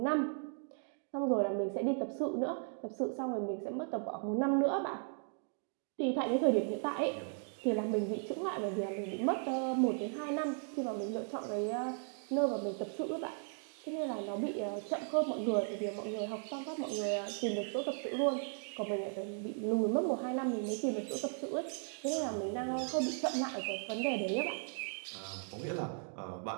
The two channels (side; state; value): left; silent; 53 dB below the other